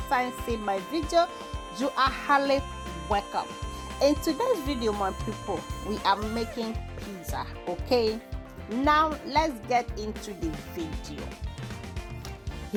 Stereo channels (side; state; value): both; identical; correlation 1.00